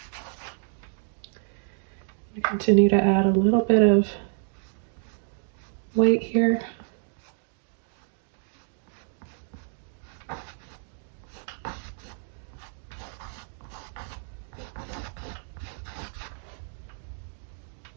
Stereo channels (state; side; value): silent; left; 59 dB below the other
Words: Continue to add a little bit of white here.